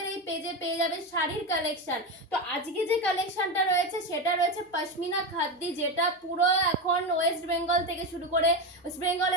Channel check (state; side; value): normal; both; correlation 0.16